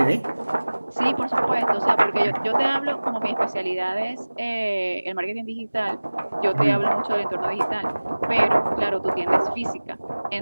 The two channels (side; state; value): both; inverted; correlation -1.00